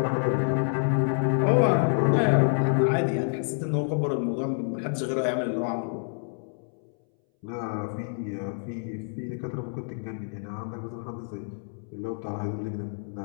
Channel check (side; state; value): right; silent; 60 dB below the other